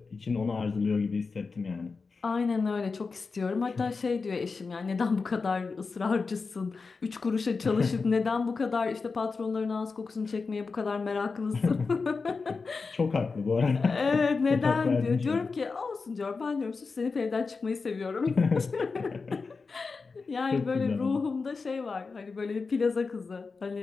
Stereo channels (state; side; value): quieter; right; 4.5 dB